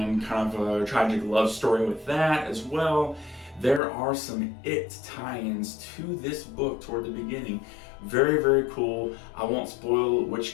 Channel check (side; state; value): right; drops out; at 3.8 s